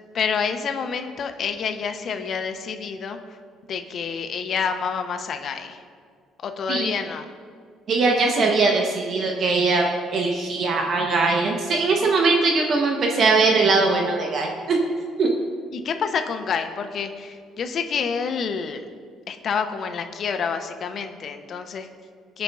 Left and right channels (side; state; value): both; normal; correlation 0.67